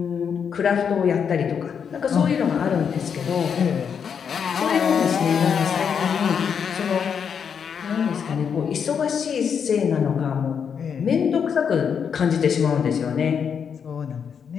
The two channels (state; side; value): quieter; right; 7.1 dB